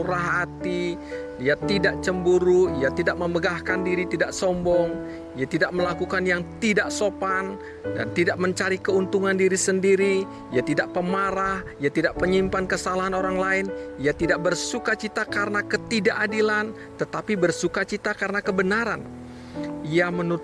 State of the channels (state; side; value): identical; both; correlation 1.00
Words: hati, ia tidak cemburu, ia tidak memegahkan diri, tidak sombong, ia tidak melakukan yang tidak sopan dan tidak mencari keuntungan diri sendiri, ia tidak pemarah, ia tidak penyimpan kesalahan orang lain, ia tidak bersukacita karena ketidakadilan, tetapi bersukacita karena kebenaran. Ia